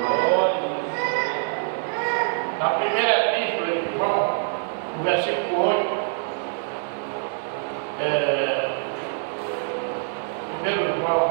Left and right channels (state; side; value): silent; left; digital silence